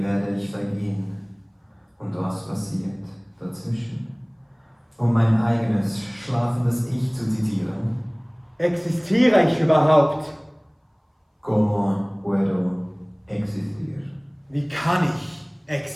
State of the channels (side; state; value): both; identical; correlation 1.00